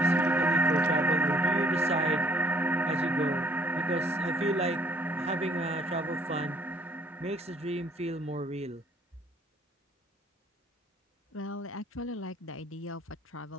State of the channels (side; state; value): both; normal; correlation 0.61